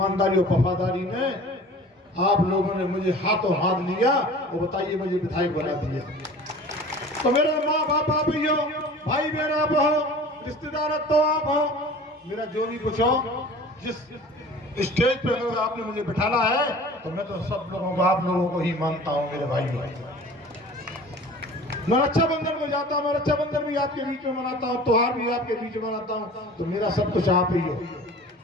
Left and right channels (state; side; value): normal; both; correlation 0.43